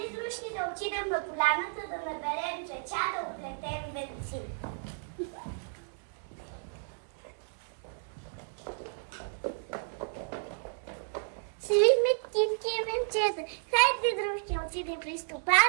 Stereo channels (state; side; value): silent; left; digital silence